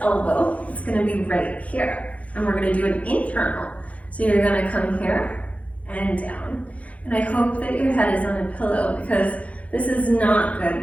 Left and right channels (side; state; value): right; late; 0.066 ms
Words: elbow, it's gonna be right here. And we're gonna do an internal. So you're gonna come here and down. And I hope that your head is on a pillow because this is not good